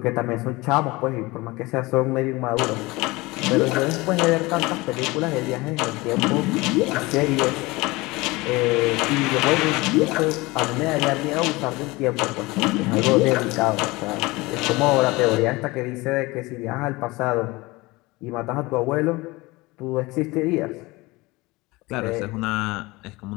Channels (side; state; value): right; quieter; 22.3 dB